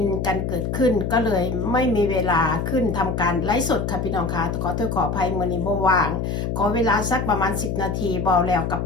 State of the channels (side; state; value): left; noise; hum, 2 dB below the sound